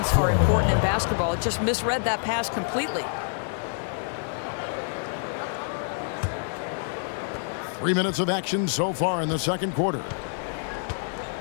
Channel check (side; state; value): right; silent; digital silence